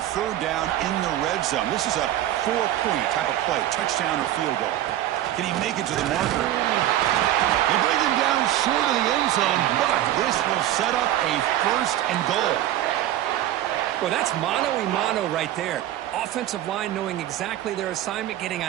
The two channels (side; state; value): left; quieter; 13.1 dB